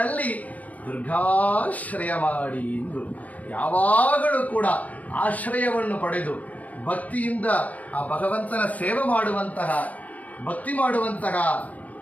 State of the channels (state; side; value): late; right; 0.071 ms